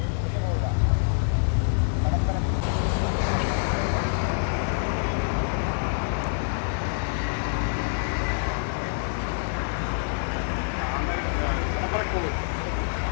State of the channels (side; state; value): right; silent; digital silence